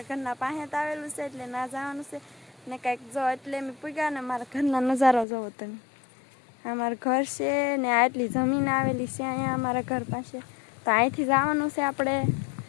ઘરના પાસે આવેલું છે એટલે ના જવાનું છે ને કંઈક જો એટલે અમે પૂગ્યા ને મારા ઘરના નજારો જોવો તમે. અમારું ઘર છે ને આટલી જમીન આવેલી છે અહીંયા અમારા ઘર પાસે. તો અહીંથી જવાનું છે આપણે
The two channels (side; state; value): right; drops out; at 5.2 s